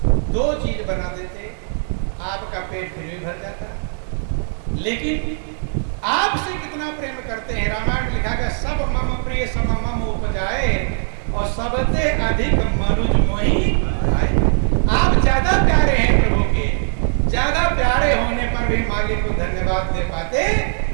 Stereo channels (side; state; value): left; silent; digital silence